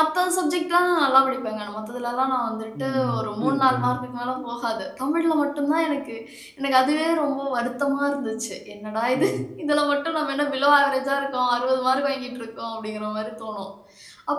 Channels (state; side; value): identical; both; correlation 1.00